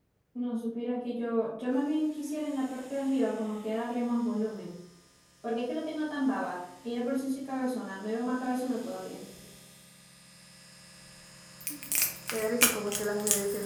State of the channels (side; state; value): both; identical; correlation 1.00